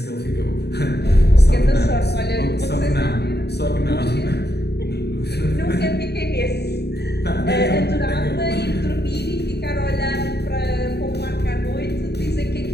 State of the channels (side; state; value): right; late; 0.48 ms